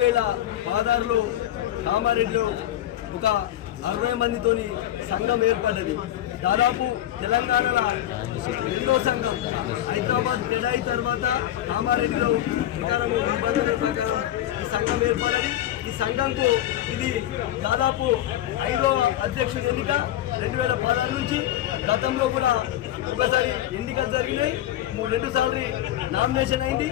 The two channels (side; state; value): right; quieter; 12.9 dB